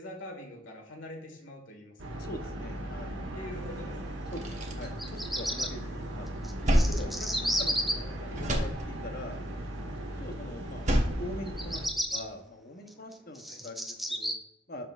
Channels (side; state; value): both; normal; correlation 0.77